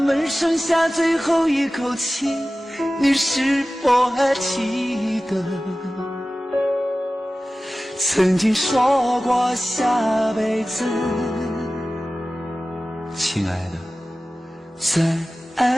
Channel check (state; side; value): normal; both; correlation 0.96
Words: 剩下最后一口气，你是否还记得曾经说过下辈子，亲爱的，再